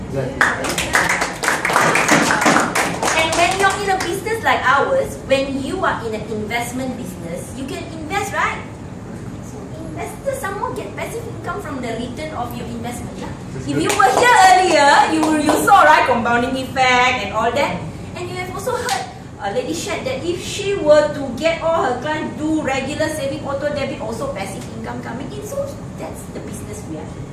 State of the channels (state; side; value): identical; both; correlation 1.00